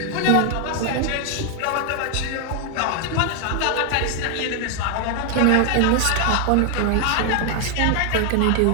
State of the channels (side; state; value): both; different; correlation 0.00